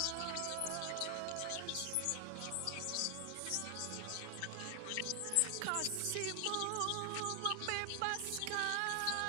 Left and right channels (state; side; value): different; both; correlation 0.00